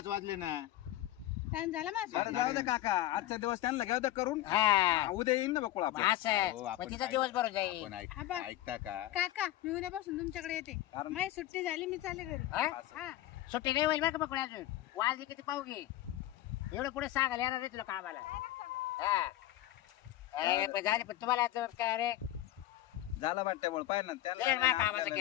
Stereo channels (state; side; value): quieter; right; 14.4 dB